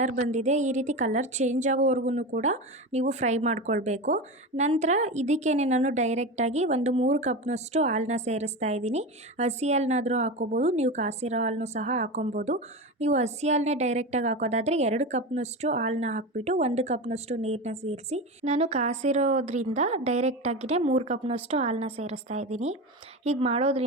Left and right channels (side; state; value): both; normal; correlation 0.23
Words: ಬಂದಿದೆ. ಈ ರೀತಿ ಕಲರ್ ಚೇಂಜ್ ಆಗೋವರೆಗೂ ಕೂಡ ನೀವು ಫ್ರೈ ಮಾಡ್ಕೊಳ್ಬೇಕು. ನಂತರ ಇದಕ್ಕೇನೆ ನಾನು ಡೈರೆಕ್ಟಾಗಿ ಒಂದು 3 ಕಪ್ನಷ್ಟು ಹಾಲನ್ನ ಸೇರಿಸ್ತಾ ಇದ್ದೀನಿ. ಹಸಿ ಹಾಲನ್ನಾದರೂ ಹಾಕ್ಕೋಬೋದು, ನೀವು ಕಾಸಿರೋ ಹಾಲನ್ನು ಸಹ ಹಾಕೊಬೋದು. ನೀವು ಹಸಿ ಹಾಲನ್ನೇ ಡೈರೆಕ್ಟಾಗಿ ಹಾಕೋದಾದರೆ 2 ಕಪ್ನಷ್ಟು ಹಾಲನ್ನ ಹಾಕ್ಬಿಟ್ಟು 1 ಕಪ್ನಷ್ಟು ನೀರನ್ನ ಸೇರಿಸಿ, ನಾನು ಕಾಸಿರೋದ್ರಿಂದ ಡೈರೆಕ್ಟಾಗಿಯೇ 3 ಕಪ್ನಷ್ಟು ಹಾಲನ್ನ ಸೇರಿಸ್ತಾ ಇದ್ದೀನಿ. ಹೀಗೆ